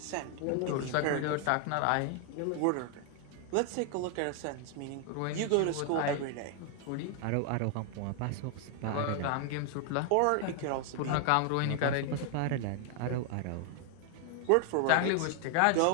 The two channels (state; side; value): different; both; correlation 0.00